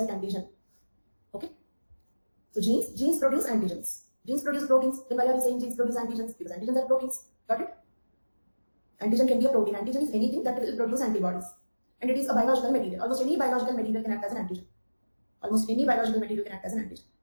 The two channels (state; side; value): inverted; both; correlation -1.00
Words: antigen. Okay. So genes produce antigens. Genes produce proteins. Then why are we saying genes produce antigens? Because antigens are proteins. Got it? Antigen can be a protein. Antigen is anything that will produce antibodies. And it is a biological material. Almost any biological material can act as an antigen. Almost any biological material can act as an antigen.